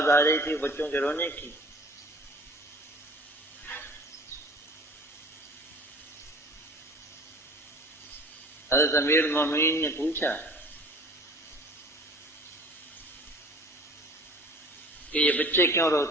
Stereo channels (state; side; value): normal; both; correlation 0.46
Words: آ رہی تھی بچوں کے رونے کی۔ حضرت امیر المومنین نے پوچھا کہ یہ بچے کیوں